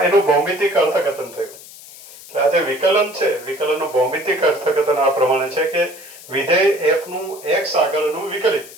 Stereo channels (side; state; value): left; noise; hiss, 18 dB below the sound